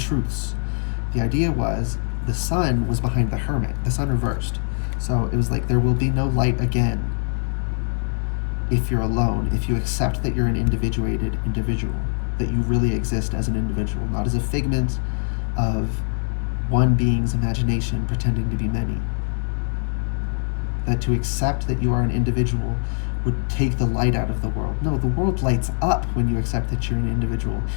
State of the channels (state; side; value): silent; right; digital silence